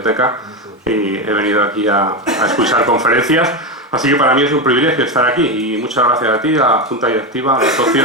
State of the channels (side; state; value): both; normal; correlation 0.13